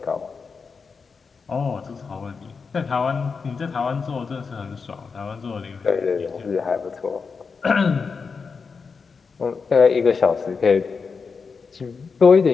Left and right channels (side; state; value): right; quieter; 5.2 dB